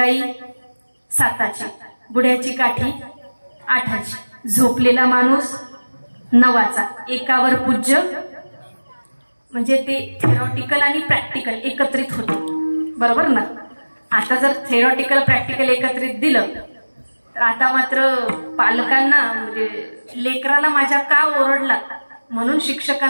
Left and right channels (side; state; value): both; inverted; correlation -1.00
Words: 7ची, बुड्याची काठी 8ची, झोपलेला माणूस 9चा, एकावर पूज्य. म्हणजे ते थेरॉटिकल आणि प्रॅक्टिकल एकत्रित होतं, बरोबर ना. आता जर थेरॉटिकल प्रॅक्टिकल एकत्रित दिलं तर आता मात्र पालकांना म्हणजे लेकराला माझ्या का ओरडला म्हणून